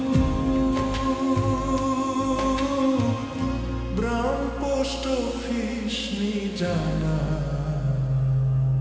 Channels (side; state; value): both; identical; correlation 1.00